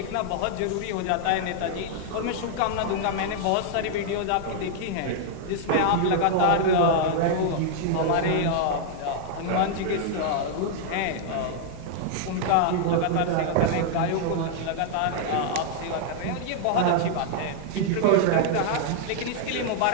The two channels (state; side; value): different; both; correlation -0.01